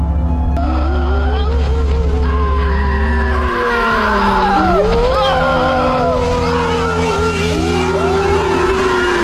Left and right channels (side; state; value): both; identical; correlation 1.00